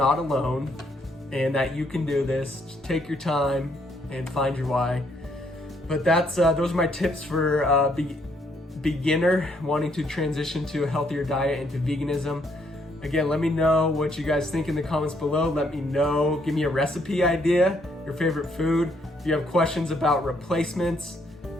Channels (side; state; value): both; normal; correlation 0.71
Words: alone and that you can do this. Just take your time and find your why. But those are my tips for beginner wanting to transition to a healthier diet and to veganism. Again, let me know what you guys think in the comments below. Let me know, give me a recipe idea, your favorite food. If you have questions about replacements,